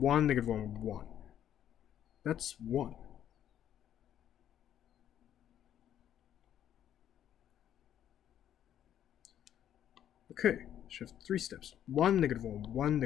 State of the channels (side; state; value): right; quieter; 10.4 dB